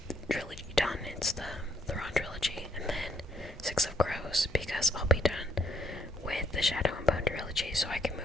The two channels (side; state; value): both; normal; correlation 0.69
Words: trilogy done. It's the Thrawn trilogy, and then Six of Crows, because I'll be done with the Shadow and Bone trilogy, so I can